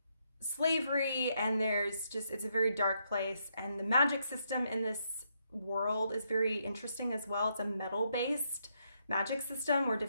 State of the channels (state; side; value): inverted; both; correlation -0.77